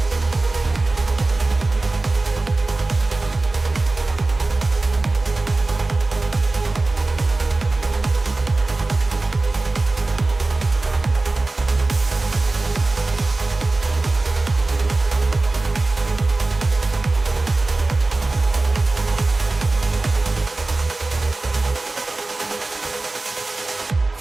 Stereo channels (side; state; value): left; quieter; 3.2 dB